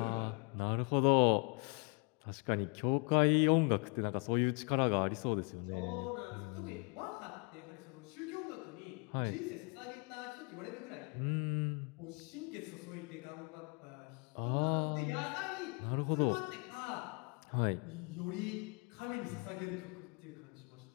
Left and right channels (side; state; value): right; quieter; 34.4 dB